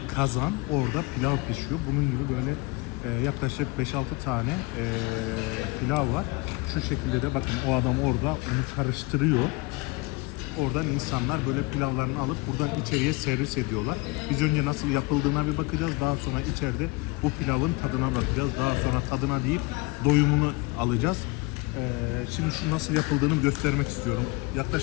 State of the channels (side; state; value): right; quieter; 23.8 dB